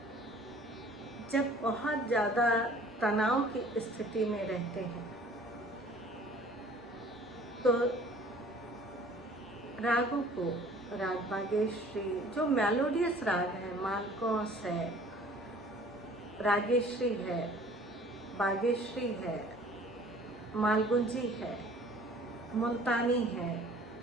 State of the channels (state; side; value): normal; both; correlation 0.51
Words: जब बहुत ज़्यादा तनाव की स्थिति में रहते हैं तो रागों को राग बागेश्वरी जो मेलोडियस राग है, मालकोस है, रागेश्वरी है, बागेश्वरी है, मालगुंजी है, मुल्तानी है,